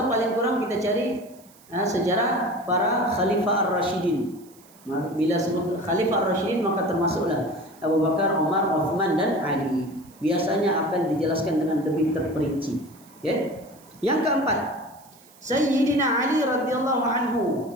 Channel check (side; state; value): right; noise; hiss, 26 dB below the sound